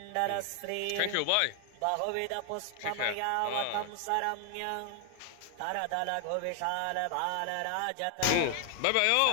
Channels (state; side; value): different; both; correlation 0.00